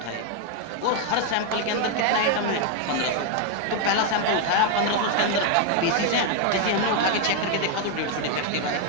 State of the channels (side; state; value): both; different; correlation 0.01